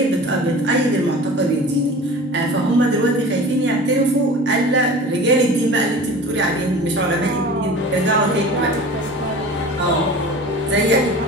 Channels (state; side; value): normal; both; correlation 0.39